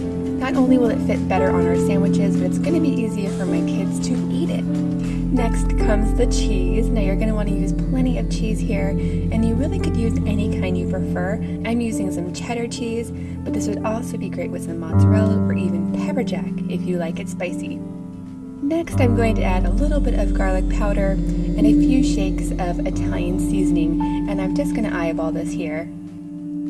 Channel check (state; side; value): identical; both; correlation 1.00